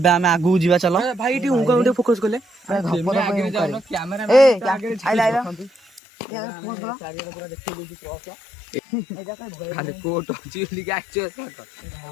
ଆମେ ଆଗକୁ ଯିବା ଚାଲ ଭାଇ ଏଠି ହୁଙ୍କା ଗୋଟେ ଫୋକସ କଲେ ଖାଲି କୋଟ ଅଛି ବୋଲି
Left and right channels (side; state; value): right; drops out; at 6.0 s